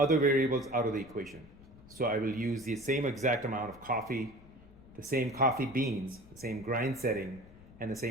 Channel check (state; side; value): noise; left; rumble, 21 dB below the sound